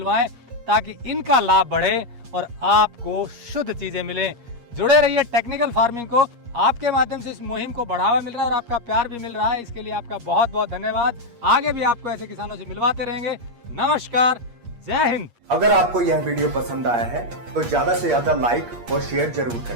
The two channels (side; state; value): left; late; 8.5 ms